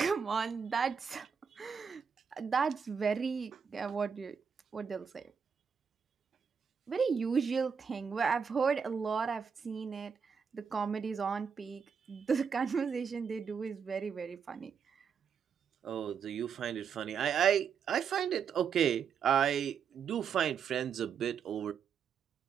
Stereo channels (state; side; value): quieter; left; 6.6 dB